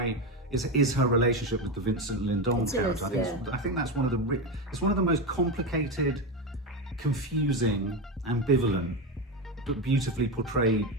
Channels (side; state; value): both; normal; correlation 0.15